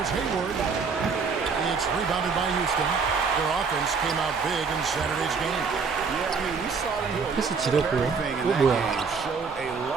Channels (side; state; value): left; quieter; 5.2 dB